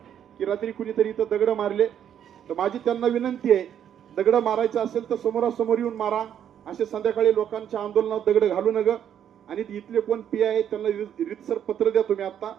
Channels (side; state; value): left; quieter; 9.5 dB